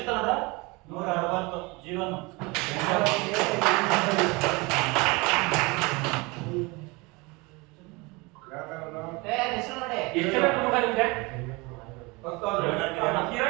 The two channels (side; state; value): left; quieter; 25.7 dB